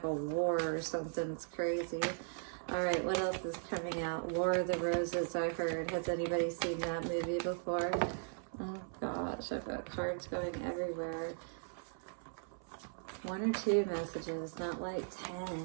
a war or something. It's crazy. All right, what else is coming out? War of the Roses, I heard. Has anybody seen that movie before? Oh gosh, I've got cards going everywhere. 1 or 2 messages, not like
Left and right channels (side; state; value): left; silent; 52 dB below the other